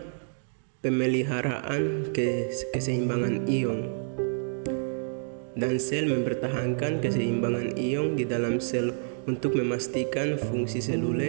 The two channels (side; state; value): left; silent; digital silence